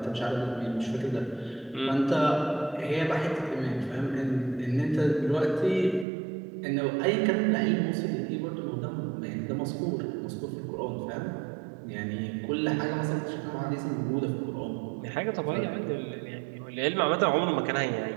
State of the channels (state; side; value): drops out; left; at 6.1 s